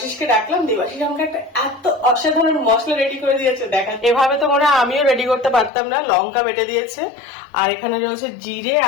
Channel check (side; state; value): right; drops out; at 5.7 s